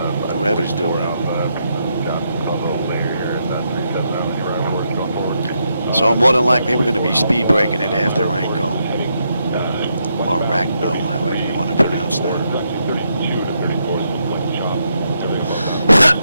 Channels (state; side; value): inverted; both; correlation -0.80